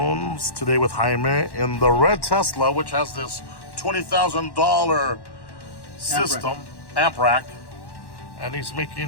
today with Jaime in the red Tesla, which has this $20,000 system, amp rack, and he's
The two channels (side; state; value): right; late; 1.1 ms